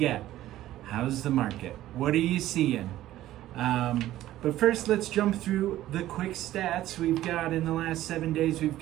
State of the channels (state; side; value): quieter; left; 14.2 dB